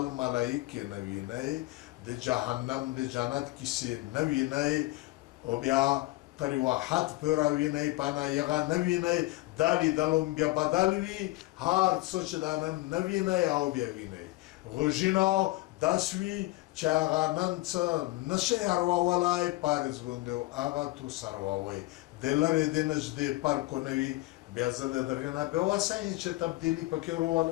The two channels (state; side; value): quieter; right; 19.8 dB